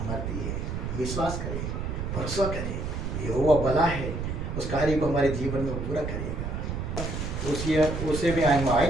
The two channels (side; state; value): right; noise; rumble, 4 dB below the sound